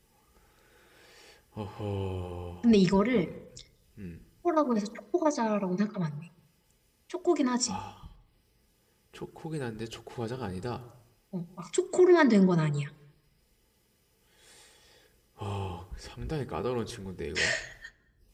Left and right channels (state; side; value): identical; both; correlation 1.00